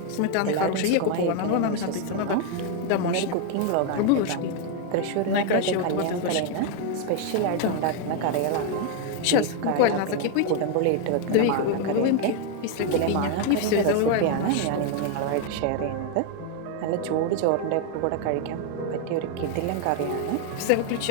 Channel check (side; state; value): both; different; correlation 0.01